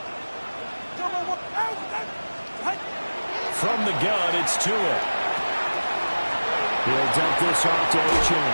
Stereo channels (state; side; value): inverted; both; correlation -1.00